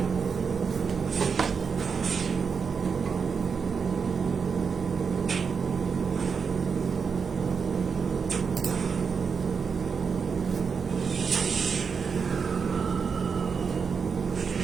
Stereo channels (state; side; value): quieter; left; 5.8 dB